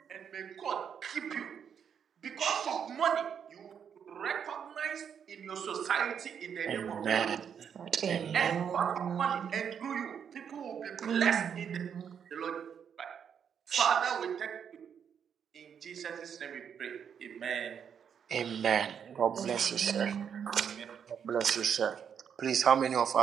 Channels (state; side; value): quieter; left; 7.7 dB